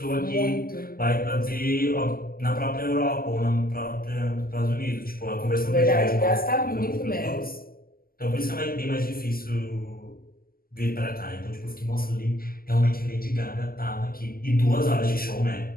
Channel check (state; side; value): late; right; 0.42 ms